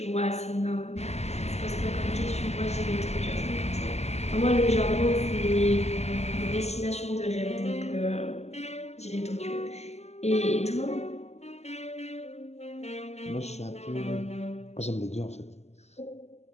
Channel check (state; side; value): late; right; 0.32 ms